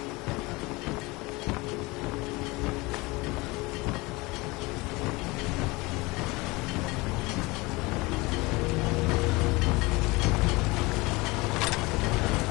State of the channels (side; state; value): right; quieter; 23.5 dB